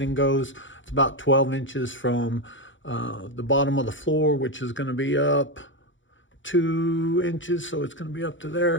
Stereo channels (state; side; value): late; right; 0.55 ms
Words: goes. It's about 12 inches from the bottom of the floor, which is going to be up 2 inches, so it's going to be up to